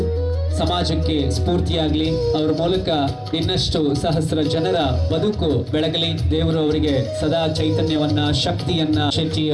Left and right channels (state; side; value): identical; both; correlation 1.00